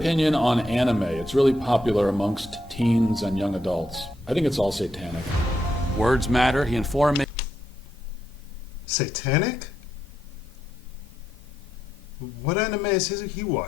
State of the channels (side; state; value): both; normal; correlation 0.81